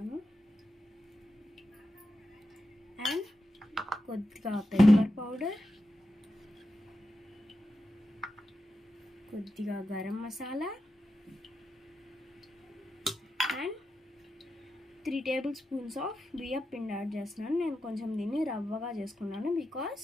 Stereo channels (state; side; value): normal; both; correlation 0.89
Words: అండ్ కొద్దిగా పెప్పర్ పౌడర్, కొద్దిగా garam masala and 3 table spoons of బియ్యం పిండి యాడ్ చేస్తున్నాను. నేను కొంచెం దీన్ని రవ్వగా చేసుకున్నాను బికాస్